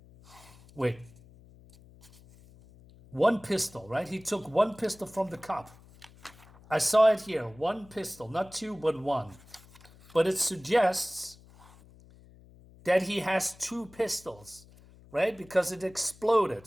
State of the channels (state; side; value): noise; left; hum, 24 dB below the sound